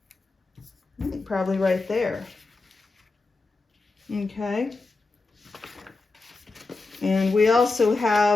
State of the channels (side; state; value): right; quieter; 3.6 dB